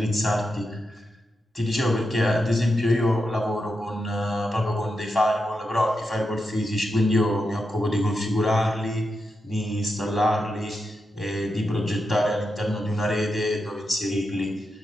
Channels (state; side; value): normal; both; correlation 0.87